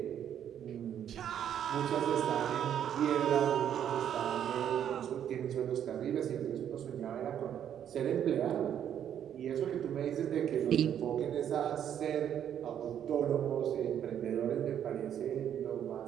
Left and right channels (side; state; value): left; quieter; 9.6 dB